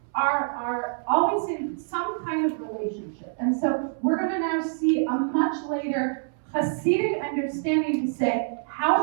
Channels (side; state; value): left; silent; 61 dB below the other